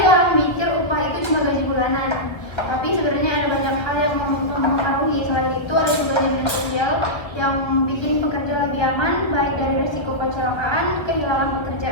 orang mikir upah itu cuma gaji bulanan, tapi sebenarnya ada banyak hal yang mempengaruhi. Selain itu ada juga jaminan sosial yang bikin pekerja lebih aman, baik dari resiko kecelakaan, kehilangan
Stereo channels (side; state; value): right; late; 1.4 ms